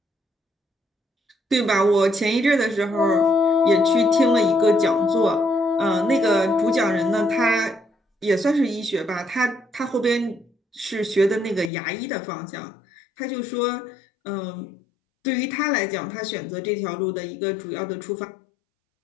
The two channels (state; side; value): drops out; right; at 11.7 s